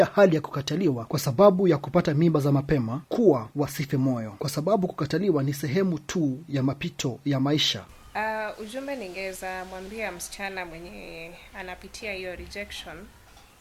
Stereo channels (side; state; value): both; identical; correlation 1.00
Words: hali ya kukataliwa kwa sababu ya kupata mimba za mapema kuwa wasife moyo, kwa sababu kukataliwa ni sehemu tu ya mapito ya maisha. Ujumbe ningeweza mwambia msichana mwenye anapitia hiyo rejection